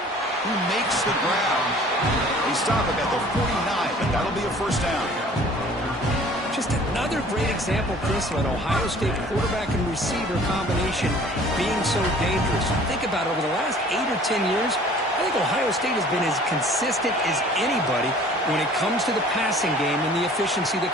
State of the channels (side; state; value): both; normal; correlation 0.50